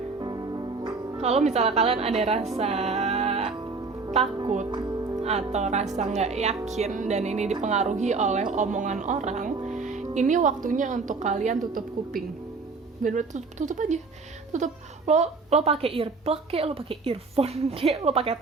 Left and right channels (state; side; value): quieter; left; 4.3 dB